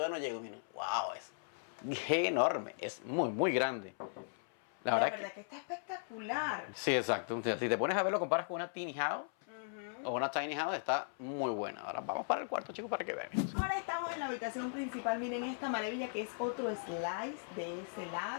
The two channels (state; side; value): silent; right; 53 dB below the other